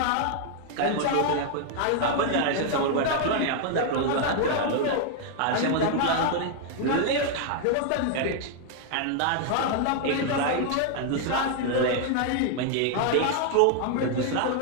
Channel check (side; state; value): both; different; correlation 0.00